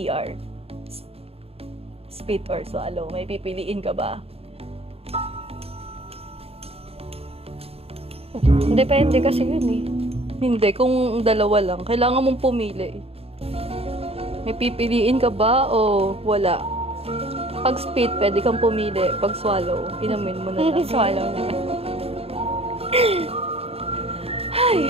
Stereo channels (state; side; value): late; left; 0.29 ms